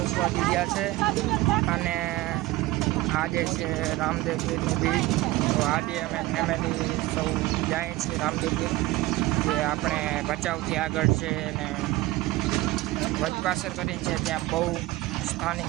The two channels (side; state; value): left; quieter; 18.6 dB